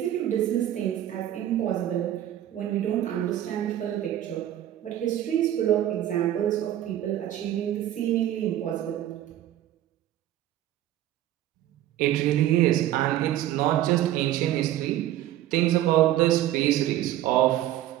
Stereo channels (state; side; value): quieter; left; 12.8 dB